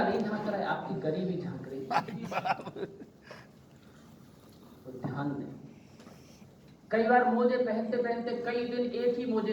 झांक रहा है, आपकी गरीबी झांक रही है। तो ध्यान दें। कई बार मोजे पहनते पहनते कई दिन एक ही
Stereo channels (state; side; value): identical; both; correlation 1.00